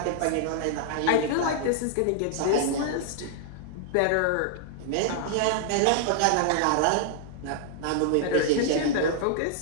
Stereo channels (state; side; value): different; both; correlation -0.01